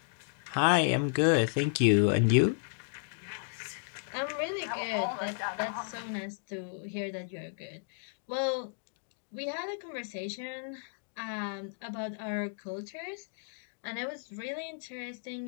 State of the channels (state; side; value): silent; right; digital silence